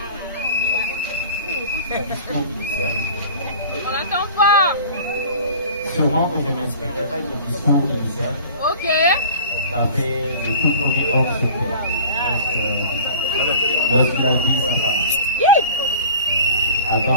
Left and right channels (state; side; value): inverted; both; correlation -0.43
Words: on n'attend pas. Sûrement que je m'inspirerai du discours initial. Ok. Ça fait le tout premier homme sur terre. Lorsqu'il a dit sa femme. Avant